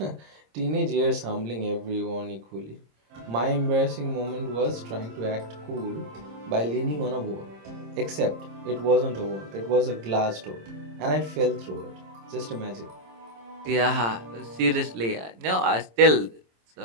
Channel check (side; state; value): left; late; 26 ms